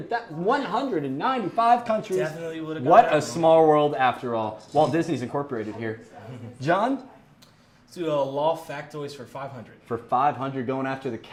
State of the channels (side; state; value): both; identical; correlation 1.00